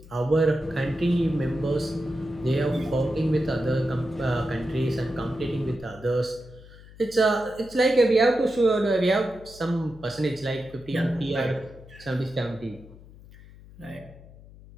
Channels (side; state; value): left; noise; hum, 20 dB below the sound